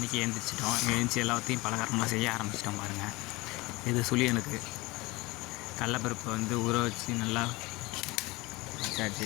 எழுந்திரிச்சிட்டோம். எழுந்திரிச்சி எல்லாத்தையும் பலகாரம்லாம் செய்ய ஆரம்பிச்சிட்டோம். பாருங்கள், இது சுழியனுக்கு கடலப்பருப்பை வந்து ஊற வச்சு நல்லா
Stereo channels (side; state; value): right; quieter; 22.4 dB